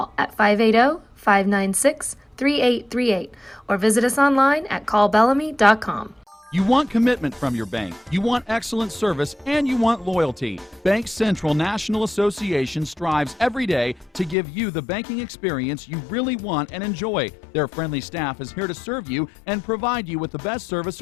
at 580-596-3838 or visit us online at callbellamy.com. You want commitment from your bank, you want excellent service, and you want loyalty. Bank Central National Association strives every day to give you the banking experience you really want and enjoy. Their friendly staff is here to serve you and provide you with the best service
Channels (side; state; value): right; drops out; at 14.4 s